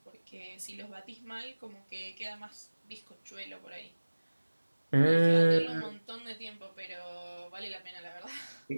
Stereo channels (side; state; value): both; inverted; correlation -1.00